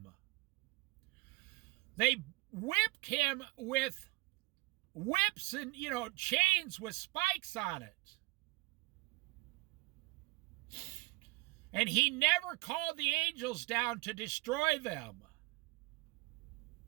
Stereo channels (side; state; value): left; quieter; 23.4 dB